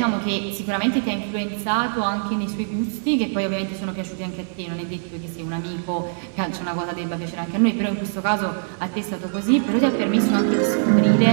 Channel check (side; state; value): left; silent; 64 dB below the other